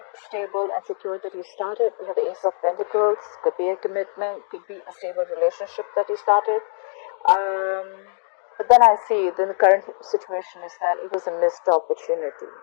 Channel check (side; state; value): right; silent; digital silence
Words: stable and secure that you started. You have the Ace of Pentacles. Could be a commitment, could be a stable relationship that you started. But then I see the current situation is that it was a missed opportunity,